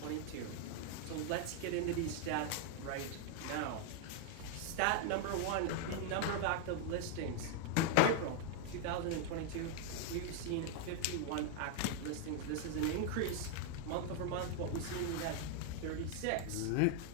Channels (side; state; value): both; different; correlation 0.00